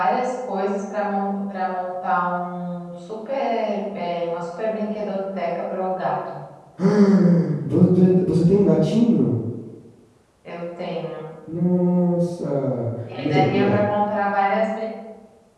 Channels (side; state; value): both; identical; correlation 1.00